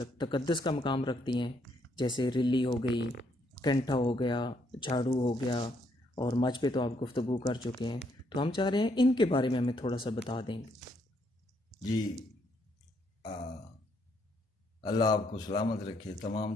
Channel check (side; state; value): both; normal; correlation 0.72